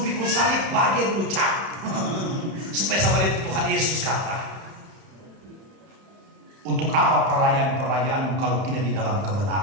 pikul salib bagian dulu cap supaya sama itu Tuhan Yesus kata untuk apa perayaan kalau tidak di dalam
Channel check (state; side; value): late; left; 31 ms